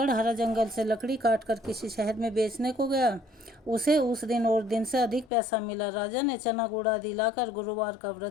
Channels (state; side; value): drops out; right; at 5.3 s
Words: जंगल से लकड़ी काटकर किसी शहर में बेचने को गया। उसे उस दिन और दिन से अधिक पैसा मिला। राजा ने चना गुड़ आदि लाकर गुरुवार का